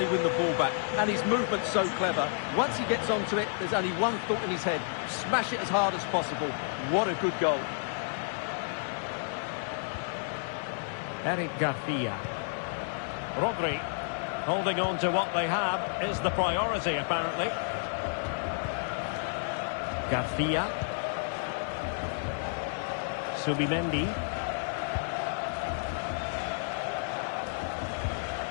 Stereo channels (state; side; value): silent; right; digital silence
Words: win the ball back. And his movement's so clever. Once he gets onto it, there's only one thought in his head. Smash it as hard as possible. What a good goal. Eric Garcia. Rodri. Holding on to what they have is the priority, apparently. Garcia. Subimendi.